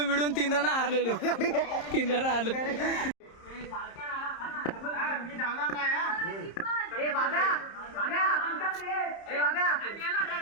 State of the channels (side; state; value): right; late; 30 ms